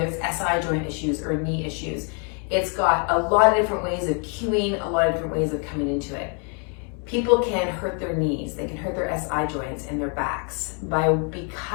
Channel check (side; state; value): right; quieter; 39.3 dB